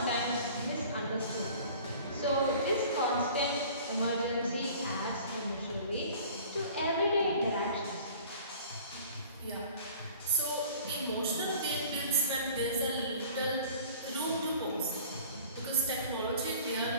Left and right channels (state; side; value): inverted; both; correlation -0.47